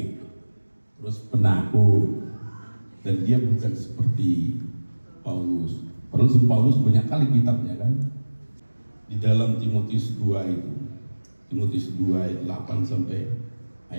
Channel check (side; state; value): both; inverted; correlation -1.00